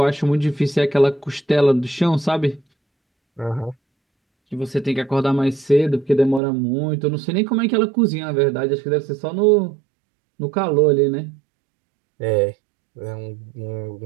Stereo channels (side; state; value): left; drops out; at 6.4 s